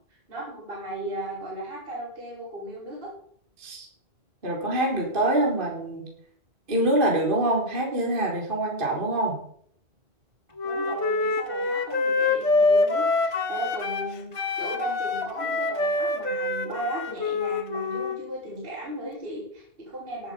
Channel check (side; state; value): left; late; 2.5 ms